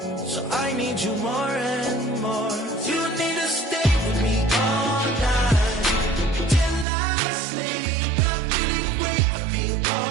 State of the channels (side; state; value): left; drops out; at 6.9 s